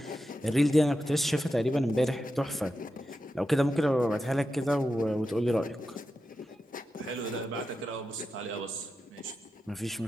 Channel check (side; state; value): both; normal; correlation 0.90